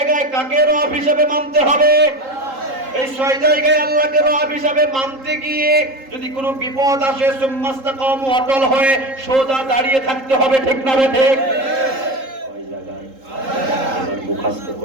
কাকে রব হিসাবে মানতে হবে? এই 6 জায়গায় আল্লাহকে রব হিসাবে মানতে গিয়ে যদি কোনো বিপদ আসে, সুম্মাস্তাকামু, অটল হয়ে সোজা দাঁড়িয়ে থাকতে হবে। ঠিক না ঠিক? কয় জায়গায়? এবার মুখস্থ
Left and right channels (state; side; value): late; left; 3.8 ms